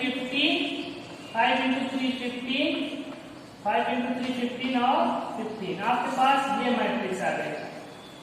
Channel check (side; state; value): both; identical; correlation 1.00